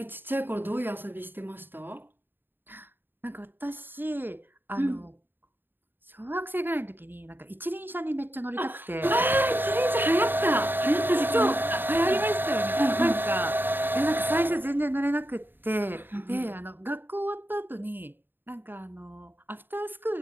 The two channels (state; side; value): late; left; 0.095 ms